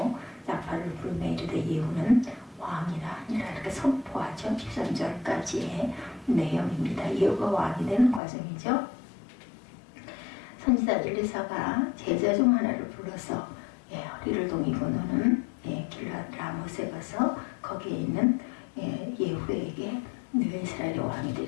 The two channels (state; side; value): drops out; right; at 8.2 s